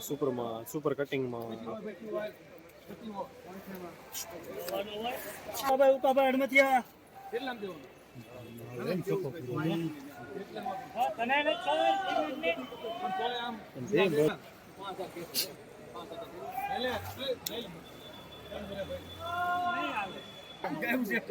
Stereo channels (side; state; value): both; identical; correlation 1.00